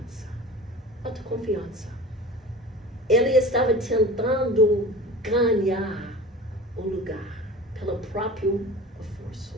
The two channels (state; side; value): normal; both; correlation 0.37